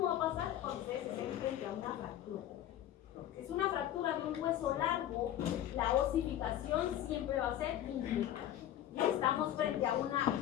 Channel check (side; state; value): right; quieter; 12.0 dB